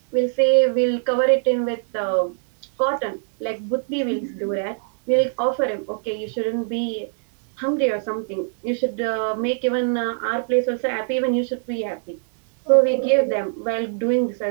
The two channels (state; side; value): silent; left; digital silence